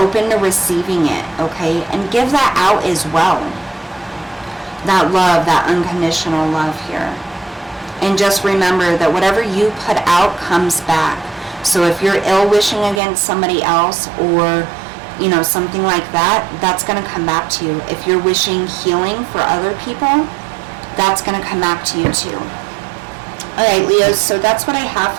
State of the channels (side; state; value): left; drops out; at 13.0 s